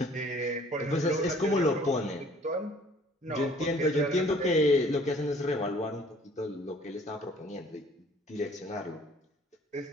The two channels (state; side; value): normal; both; correlation 0.55